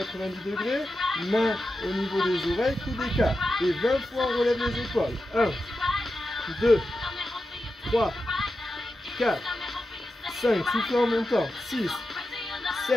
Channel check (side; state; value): both; normal; correlation 0.90